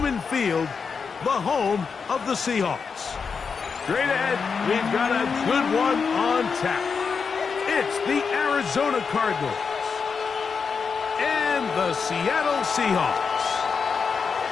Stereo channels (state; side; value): quieter; right; 5.6 dB